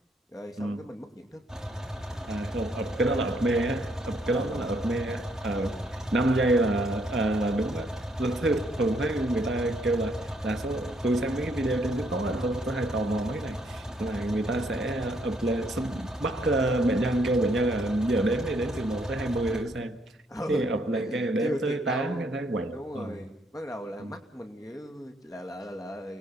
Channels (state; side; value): normal; both; correlation 0.70